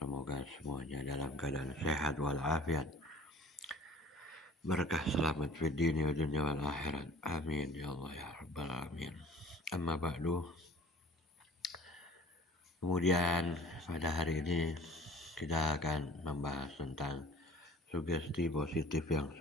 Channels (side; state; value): both; normal; correlation 0.48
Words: semuanya dalam keadaan sehat walafiat, berkah selamat fid dini wa dunya wal akhirat, amin ya Allah ya rabbal alamin. Amma ba'du. Kemudian pada hari ini kita akan membahas tentang sugesti positif yang